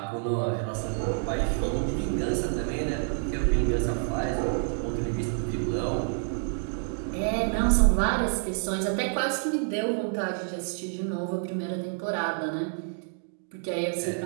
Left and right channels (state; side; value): silent; left; 59 dB below the other